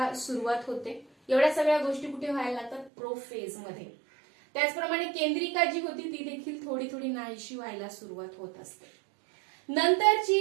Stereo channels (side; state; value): left; drops out; at 2.9 s